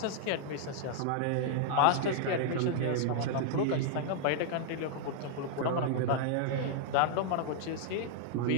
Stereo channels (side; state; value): both; different; correlation -0.01